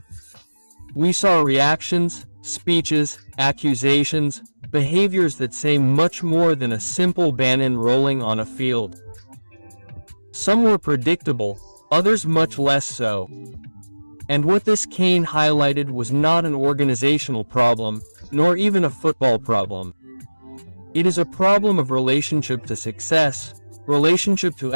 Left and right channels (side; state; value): both; inverted; correlation -1.00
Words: We saw reactions, speeches, accusations, behaviors that say much more than a simple banana rolling on a field. Some were predictable, others much less so. And what this CAN highlighted was not an organizational problem, nor even a football problem. It is a problem of relationship to success, relationship to